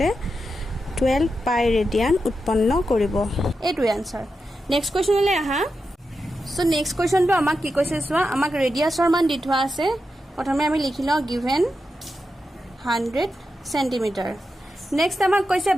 12 পাই ৰেডিয়ান উৎপন্ন কৰিব। এইটোৱে আনসাৰ। নেক্সট কুৱেশ্যনলৈ আহা। চ' নেক্সট কুৱেশ্যনটো আমাক কি কৈছে চোৱা, আমাক ৰেডিয়াছৰ মান দি থোৱা আছে। প্ৰথমে আমি লিখি লওঁ গিভেন 100 চেণ্টিমিটাৰ। নেক্সট আমাক কৈছে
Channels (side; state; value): both; normal; correlation 0.88